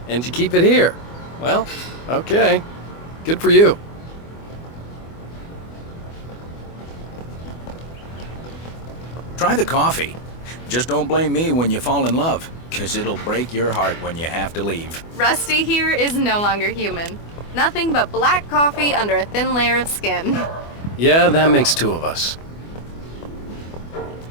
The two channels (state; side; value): late; right; 24 ms